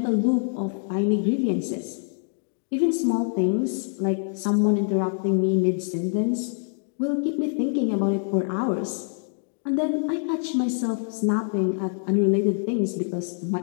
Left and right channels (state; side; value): silent; right; digital silence